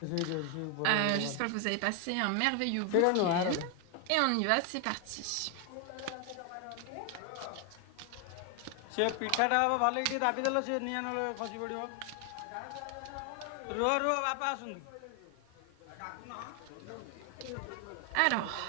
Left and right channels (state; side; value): different; both; correlation 0.01